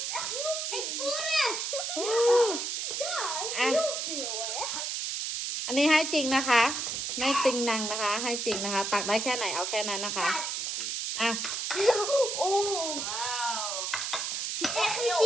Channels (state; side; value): noise; right; hiss, 2 dB below the sound